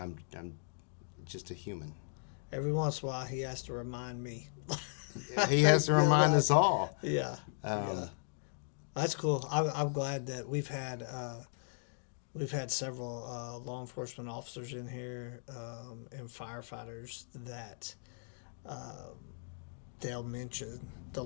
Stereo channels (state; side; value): silent; right; digital silence